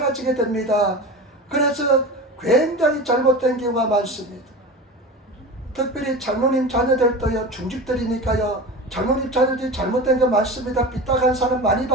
됩니다. 그래서 굉장히 잘못된 경우가 많습니다. 특별히 장로님 자녀들도요, 중직들이니까요, 장로님 자녀들이 잘못된 거 많습니다. 삐딱한 사람 많이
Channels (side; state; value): both; normal; correlation 0.30